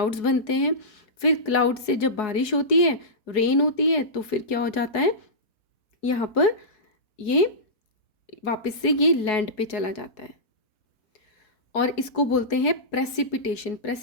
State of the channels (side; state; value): right; late; 4.7 ms